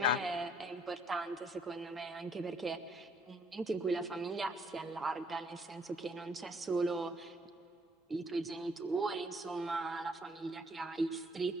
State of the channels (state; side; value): normal; both; correlation 0.64